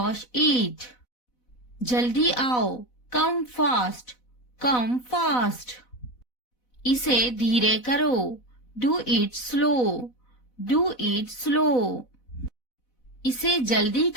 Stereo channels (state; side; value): late; right; 4.0 ms